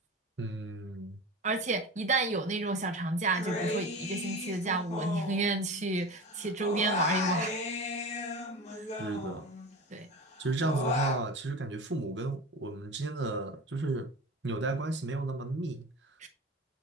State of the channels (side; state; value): both; normal; correlation 0.31